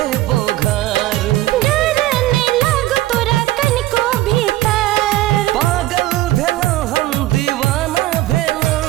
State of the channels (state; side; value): quieter; left; 16.3 dB